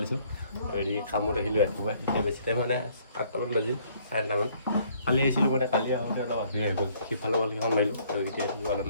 লৈছোঁ হেৰি কামত আহিলোঁ ৰাতিপুৱা এতিয়া বেছি টাইম মানে 8টামান বাজিল 8:30মান কালি আহিছিলোঁ মানে কালি আহোঁতে অলপ আহি হৈ গ'ল সিফালৰ বলকেইখন মাৰিলোঁ আৰু এতিয়া অলপ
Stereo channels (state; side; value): inverted; both; correlation -0.62